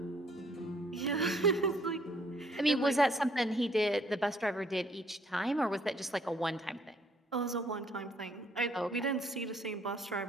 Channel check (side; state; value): both; normal; correlation 0.64